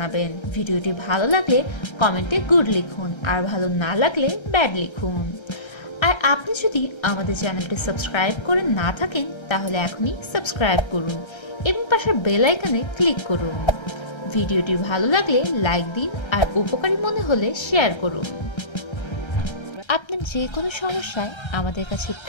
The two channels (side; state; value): right; late; 1.3 ms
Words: ভিডিওটি ভালো লাগলে কমেন্টে গুড লিখুন, আর ভালো না লাগলে ব্যাড লিখুন। আর আপনি যদি আমাদের চ্যানেলটি সাবস্ক্রাইব করে না থাকেন তাহলে এখনই সাবস্ক্রাইব করুন এবং পাশের বেল আইকনে ক্লিক করুন। ভিডিওটি ভালো লাগলে লাইক দিন আর উপকারী মনে হলে শেয়ার করুন। আপনি যে কোনো সমস্যায় আমাদের কাছে